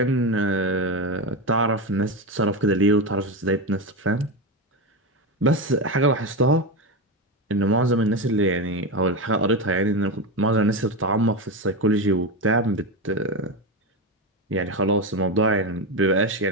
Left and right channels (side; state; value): both; normal; correlation 0.15